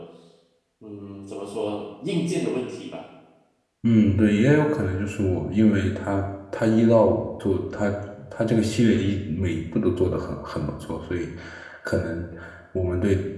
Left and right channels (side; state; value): both; identical; correlation 1.00